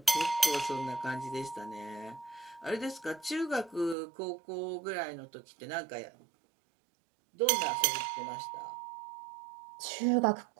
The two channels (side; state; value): left; drops out; at 4.0 s